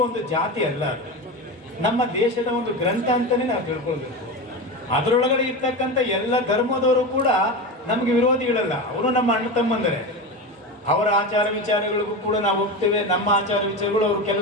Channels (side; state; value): both; normal; correlation 0.22